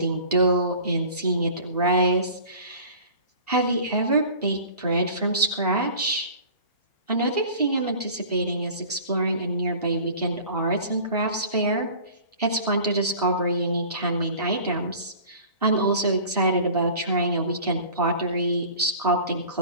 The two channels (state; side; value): inverted; both; correlation -0.43